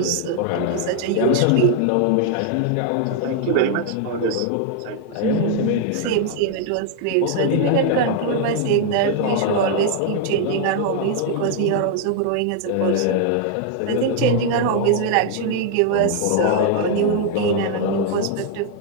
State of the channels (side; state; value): both; different; correlation 0.00